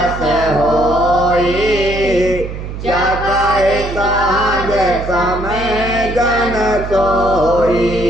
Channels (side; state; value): right; noise; hum, 8 dB below the sound